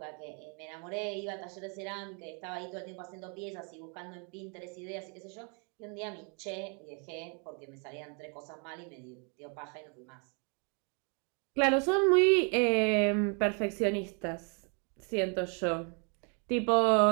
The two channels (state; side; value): quieter; left; 37.2 dB